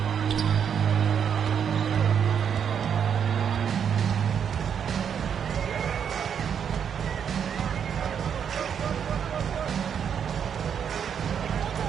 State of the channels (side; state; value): left; quieter; 7.8 dB